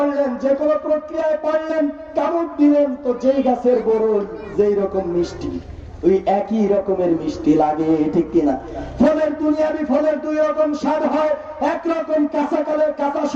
যে কোনো প্রক্রিয়ায় পারলেন, কামড় দিলেন, তো যেই গাছের বরই যেই রকম মিষ্টি, ওই একই রকমের মিষ্টি লাগে, ঠিক কিনা? ফলের দুনিয়াবি ফলের 2 রকম স্বাদ হয়। একরকম কাঁচাকালের কাঁচা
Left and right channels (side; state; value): both; identical; correlation 1.00